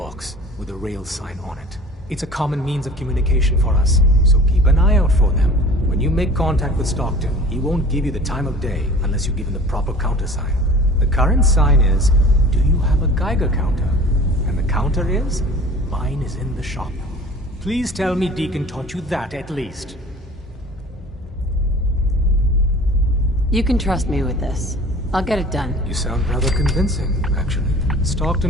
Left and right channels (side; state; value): both; normal; correlation 0.44